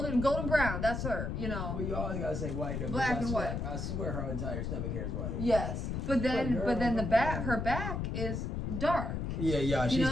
brown, that's her, you know. Well, you always gotta say white. Black and white. I swear her entire stomach hair is white. Yes. But then her back is dark. Yeah, she's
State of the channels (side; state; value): left; noise; rumble, 2 dB below the sound